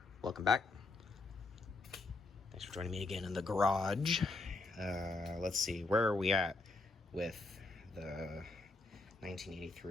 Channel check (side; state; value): right; quieter; 3.4 dB